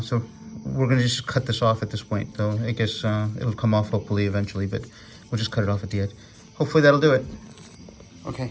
So we're gonna just cut this off at this point, though. I guess it'll come off hopefully eventually, but we'll just cut it off at the edge. Hopefully that'll do it.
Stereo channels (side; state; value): both; identical; correlation 1.00